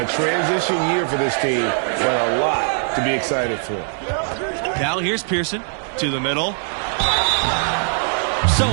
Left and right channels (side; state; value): left; silent; digital silence